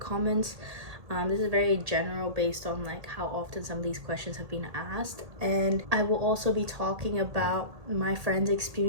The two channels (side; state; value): left; late; 1.8 ms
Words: This is very general based on like how often some of these questions have been asked, and I will also be talking about my friend's